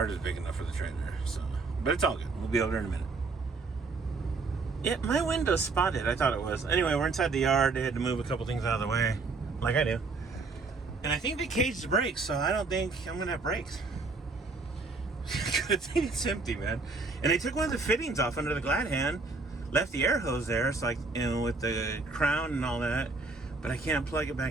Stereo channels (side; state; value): left; quieter; 4.0 dB